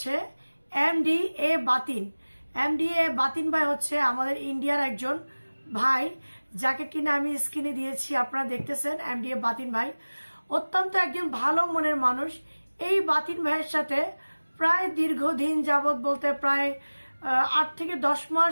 এমডি এ বাতিন। এমডি এ বাতিন ভাই হচ্ছে আমাদের ইন্ডিয়ার একজন ভাই, যাকে কিনা আমি স্ক্রিনে দিয়েছি, আপনারা দেখতেছেন। এমডি এ বাতিন ভাই অত্যন্ত একজন ভালো মনের মানুষ। এই বাতিন ভাইয়ের সাথে প্রায় দীর্ঘদিন যাবৎ, বলতে প্রায় 8 থেকে 10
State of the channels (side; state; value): both; inverted; correlation -1.00